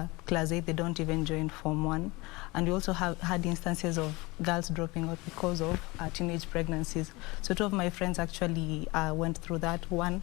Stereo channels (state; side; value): quieter; right; 23.7 dB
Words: class 8, they don't even join Form 1. And we also had instances of girls dropping out because of teenage pregnancies. So two of my friends actually went through that. One